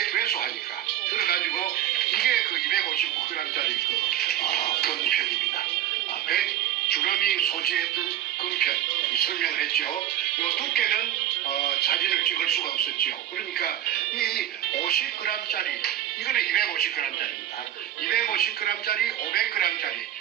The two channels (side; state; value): left; quieter; 12.3 dB